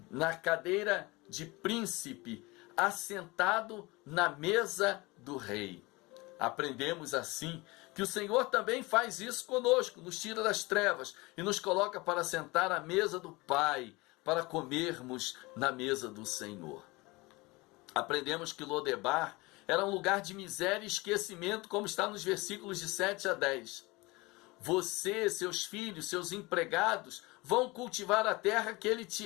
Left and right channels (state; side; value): quieter; right; 23.4 dB